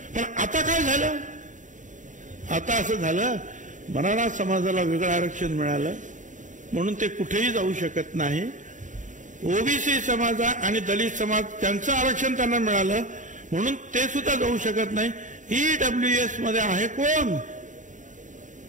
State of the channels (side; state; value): left; late; 0.36 ms